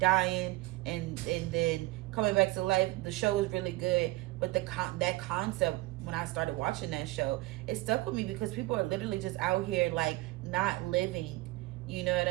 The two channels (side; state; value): left; quieter; 20.0 dB